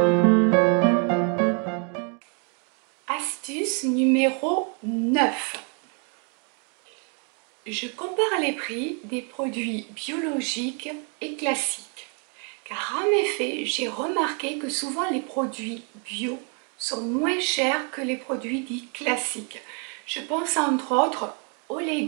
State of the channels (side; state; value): left; quieter; 38.1 dB